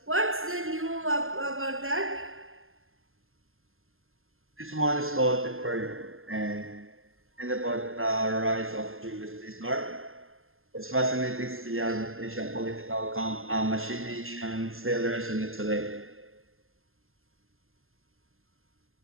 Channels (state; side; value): late; left; 0.61 ms